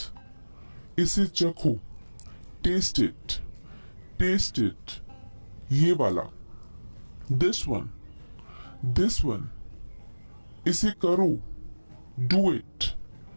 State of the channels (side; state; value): both; inverted; correlation -1.00